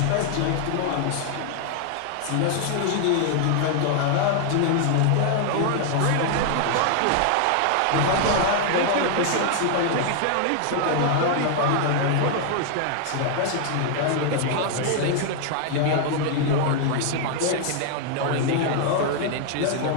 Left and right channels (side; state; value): both; different; correlation 0.00